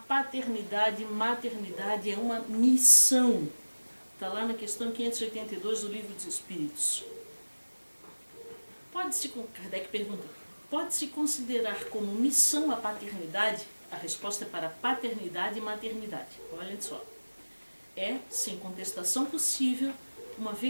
e maternidade é uma missão. Está lá na questão 582 do Livro dos Espíritos. Kardec pergunta, pode-se considerar como missão a paternidade? A resposta é para paternidade e maternidade. Olhem só. É, sem contestação possível, uma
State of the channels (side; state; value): both; inverted; correlation -1.00